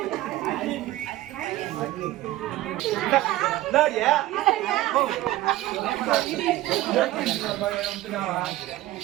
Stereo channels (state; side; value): quieter; left; 16.0 dB